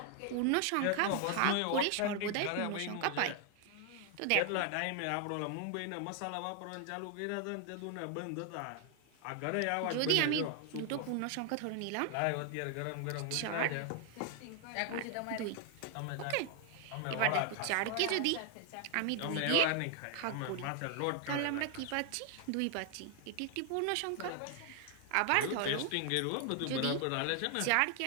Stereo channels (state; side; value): different; both; correlation 0.00